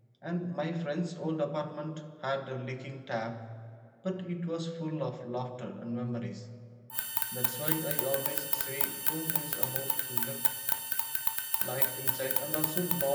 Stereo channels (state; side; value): identical; both; correlation 1.00